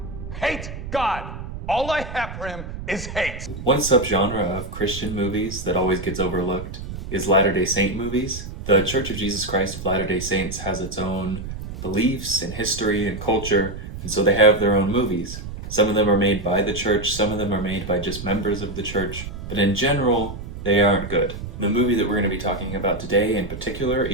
hate God. All I have for him is hate. One subgenre of Christian movies that always gets overlooked is Latter-day Saint movies. The Church of Jesus Christ of Latter-day Saints has its own beliefs and history and culture, and so they have their own movies. Some of them are made by the church, some of them are made by just members of the church, but in general, they aren't good. The movie that we're going to be talking about today, in particular,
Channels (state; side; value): noise; right; rumble, 9 dB below the sound